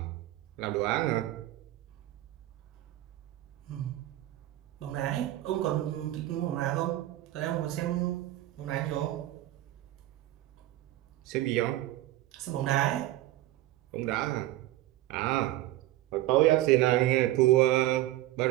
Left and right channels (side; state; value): left; quieter; 15.6 dB